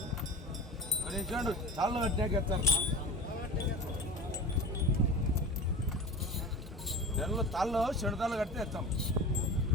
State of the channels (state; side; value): normal; both; correlation 0.33